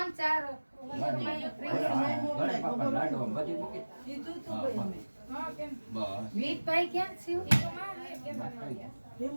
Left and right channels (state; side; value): inverted; both; correlation -1.00